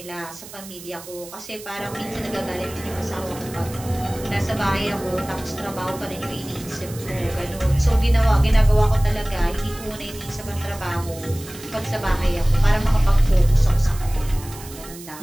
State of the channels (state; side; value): noise; right; hiss, 16 dB below the sound